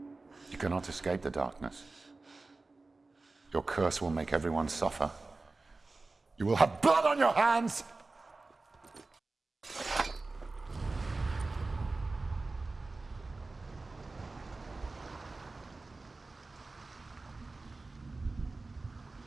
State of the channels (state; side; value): quieter; left; 3.5 dB